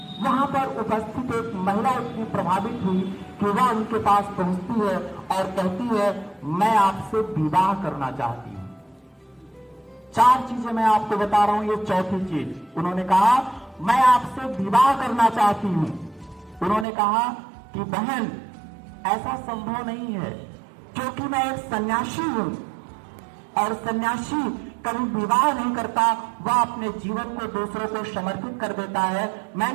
वहां पर उपस्थित एक महिला इतनी प्रभावित हुई कि वह उनके पास पहुंचती है और कहती है मैं आपसे विवाह करना चाहती हूं। 4 चीजें मैं आपको बता रहा हूं, ये चौथी चीज। उन्होंने कहा मैं आपसे विवाह करना चाहती हूं। उन्होंने कहा कि बहन ऐसा संभव नहीं है क्योंकि मैं एक सन्यासी हूं और सन्यासी कभी विवाह नहीं करता, वह अपने जीवन को दूसरों को समर्पित कर देता है।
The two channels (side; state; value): left; drops out; at 16.9 s